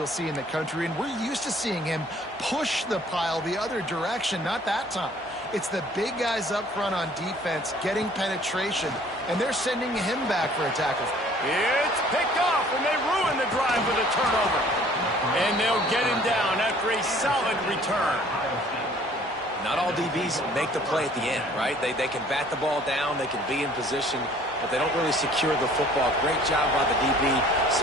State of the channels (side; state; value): both; normal; correlation 0.55